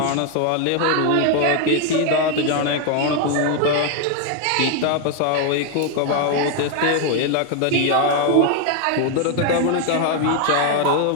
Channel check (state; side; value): different; both; correlation 0.01